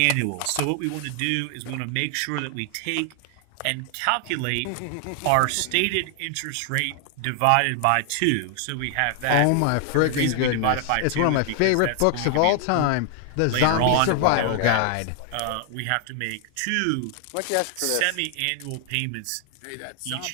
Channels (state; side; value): different; both; correlation 0.00